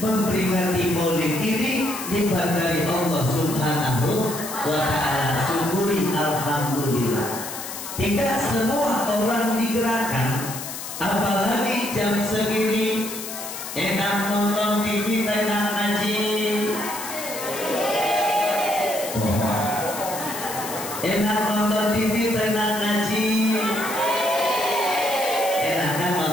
maulid ini, nikmat dari Allah Subhanahu wa ta'ala. Syukuri alhamdulillah. Tidak semua orang digerakkan, apalagi jam segini enak nonton TV, enak ngaji, enak nonton TV, enak ngaji, enak kan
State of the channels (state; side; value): noise; left; hiss, 8 dB below the sound